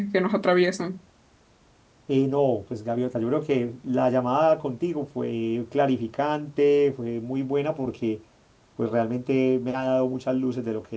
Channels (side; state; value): both; identical; correlation 1.00